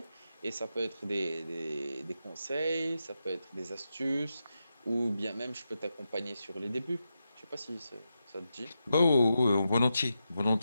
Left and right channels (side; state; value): both; inverted; correlation -0.88